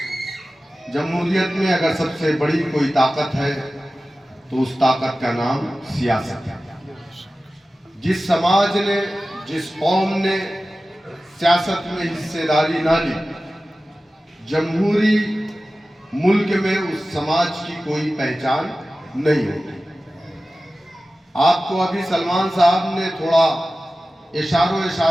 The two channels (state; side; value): normal; both; correlation 0.96